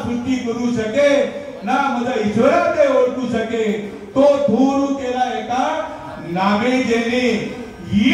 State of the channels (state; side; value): identical; both; correlation 1.00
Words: सृष्टी करू शके ना मद ईश्वरा ते ओळखू शके. तो धूर केला एका नामे जेने.